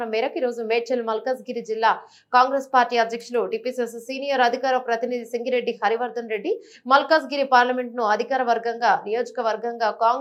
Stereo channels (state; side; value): identical; both; correlation 1.00